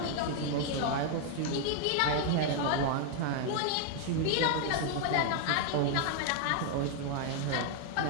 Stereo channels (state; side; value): different; both; correlation 0.00